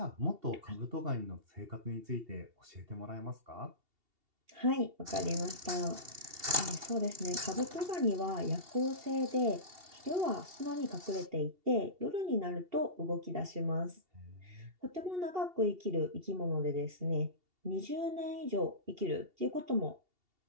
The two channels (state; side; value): late; left; 2.7 ms